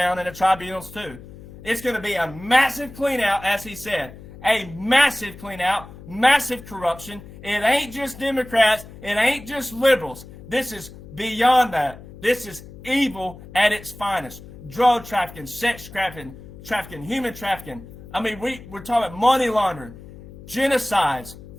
in the tribunals too. It's going to be a massive clean out, as he said. A massive clean out, massive corruption. It ain't just Democrats. It ain't just liberals. This is beyond that. This is evil at its finest. Drug trafficking, sex trafficking, human trafficking. I mean, we're talking about money laundering, genocides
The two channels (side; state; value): left; noise; hum, 17 dB below the sound